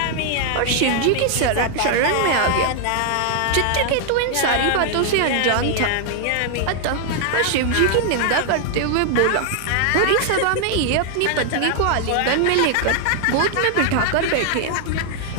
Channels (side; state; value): both; different; correlation 0.00